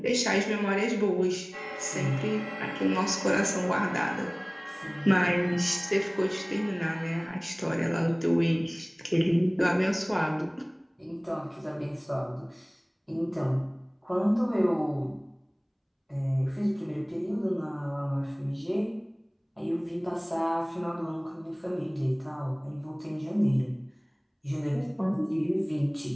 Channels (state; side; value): identical; both; correlation 1.00